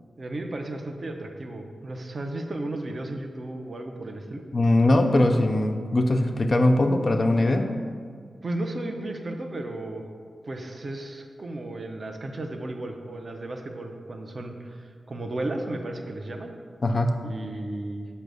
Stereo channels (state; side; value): normal; both; correlation 0.94